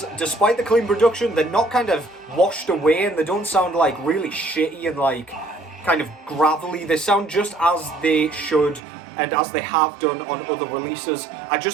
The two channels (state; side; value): drops out; left; at 8.8 s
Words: despite the clean production, they're not kind of washed away, and they don't sound like really shitty and like kind of gravelly. They sound just as they should and as they have done on other releases. I